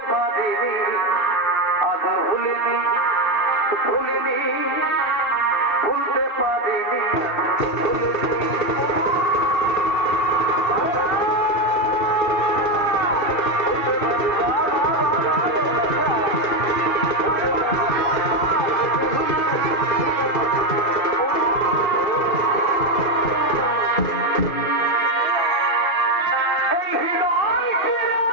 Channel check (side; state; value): right; late; 2.7 ms